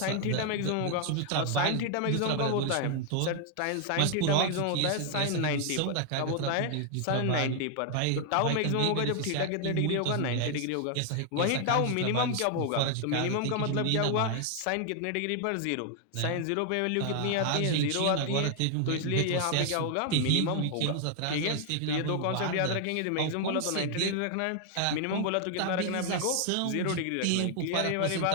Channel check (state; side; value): different; both; correlation 0.00